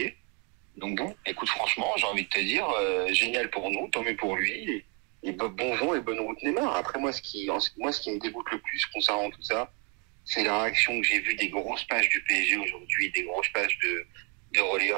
Donc bon, écoute, franchement, j'ai envie de te dire, génial pour nous, tant mieux pour lui, et bon vent et bonne route Neymar. Après, moi, ce qui me dégoûte le plus concernant tout ça, c'est la réaction que j'ai vue des grosses pages du PSG aujourd'hui, des grosses pages de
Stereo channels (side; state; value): left; quieter; 35.5 dB